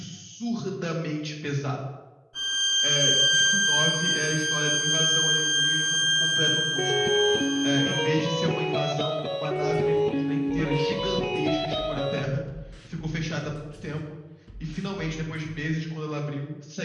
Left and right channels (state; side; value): identical; both; correlation 1.00